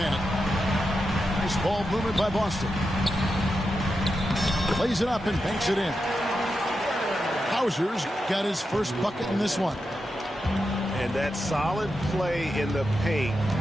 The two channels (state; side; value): normal; both; correlation 0.88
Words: Nice ball movement by Boston. Plays it up and banks it in. Hauser's got his first bucket in this one. And that solid play in the paint